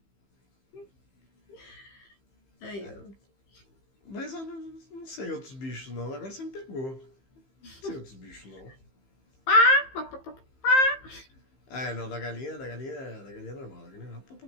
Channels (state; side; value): late; right; 15 ms